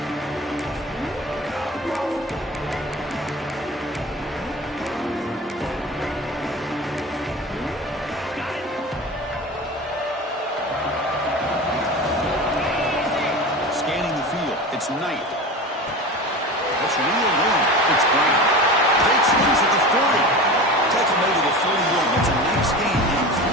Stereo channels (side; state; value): both; normal; correlation 0.31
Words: Scanning the field, it's Knight. It's real room. It's Brown. Great squeeze at the 40. Tackle made to the 41. It's a nice gain getting